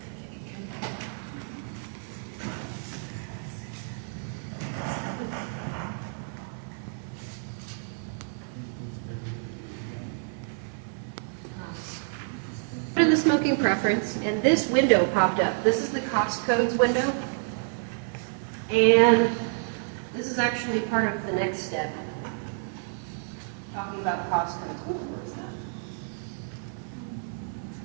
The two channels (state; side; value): silent; left; 59 dB below the other